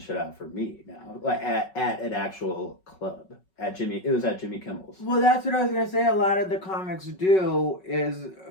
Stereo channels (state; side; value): late; right; 5.4 ms